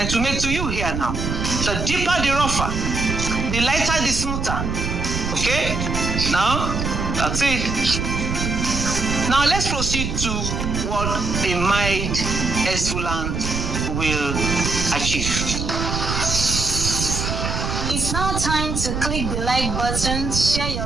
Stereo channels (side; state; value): right; noise; rumble, 2 dB below the sound